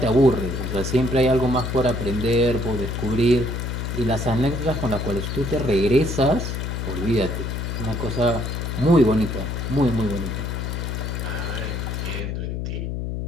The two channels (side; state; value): left; noise; hum, 3 dB below the sound